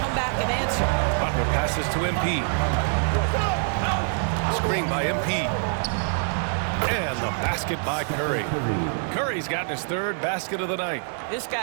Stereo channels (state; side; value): silent; left; 60 dB below the other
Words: back and answer. Butler passes to MP. Screen by MP. And the basket by Curry. Curry's gotten his 3rd basket of the night. This